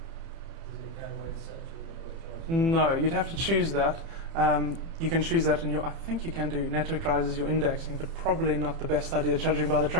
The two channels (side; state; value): left; late; 30 ms